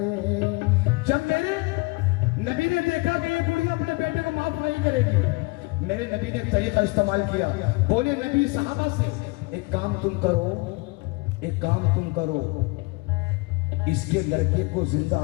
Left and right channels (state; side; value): quieter; right; 26.1 dB